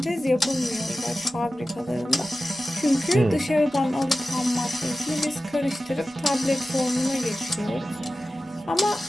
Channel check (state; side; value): normal; both; correlation 0.95